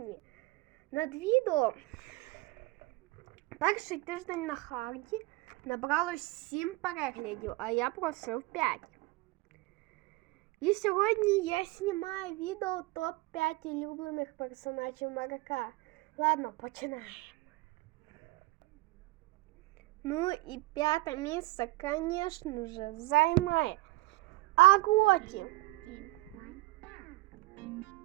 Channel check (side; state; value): left; quieter; 20.8 dB